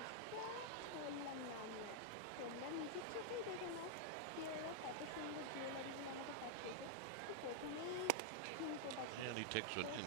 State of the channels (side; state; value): both; different; correlation -0.01